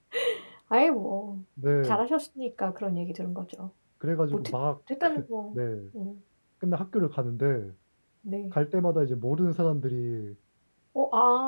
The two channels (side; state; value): both; inverted; correlation -1.00